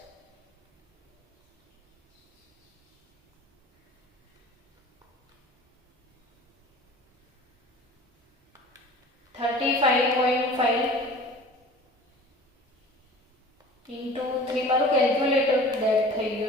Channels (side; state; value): both; normal; correlation 0.43